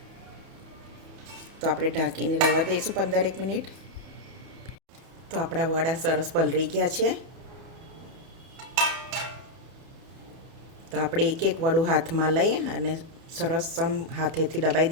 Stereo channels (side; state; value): left; late; 31 ms